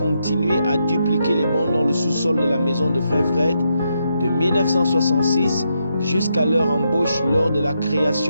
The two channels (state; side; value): inverted; both; correlation -0.81